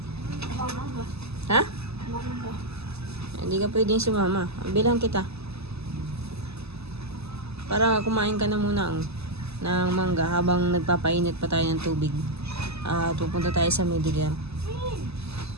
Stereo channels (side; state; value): left; late; 0.79 ms